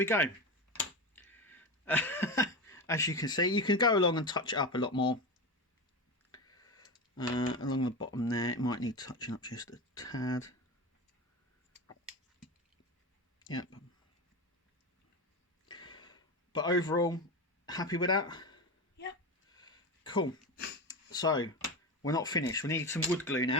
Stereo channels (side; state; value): both; normal; correlation 0.21